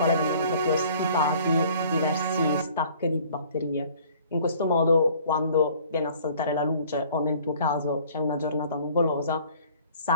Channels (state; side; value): inverted; both; correlation -0.53